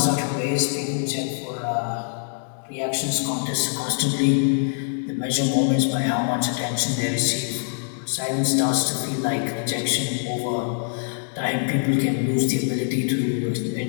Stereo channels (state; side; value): silent; right; 63 dB below the other